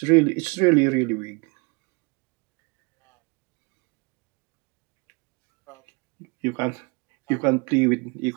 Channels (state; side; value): quieter; left; 30.1 dB